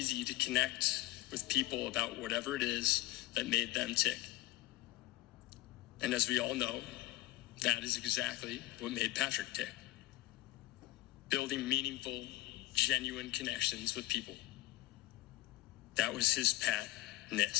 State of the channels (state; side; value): quieter; right; 18.3 dB